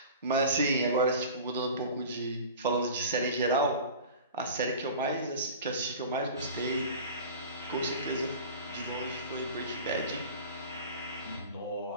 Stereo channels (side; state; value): both; inverted; correlation -0.38